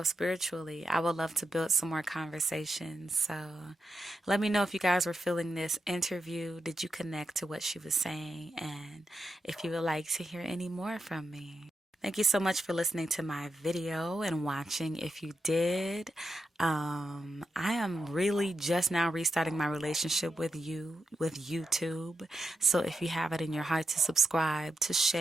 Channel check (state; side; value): normal; both; correlation 0.87